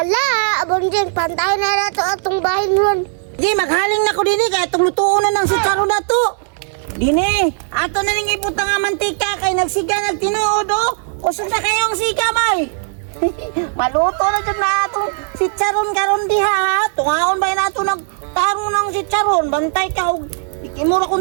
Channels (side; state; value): left; silent; 59 dB below the other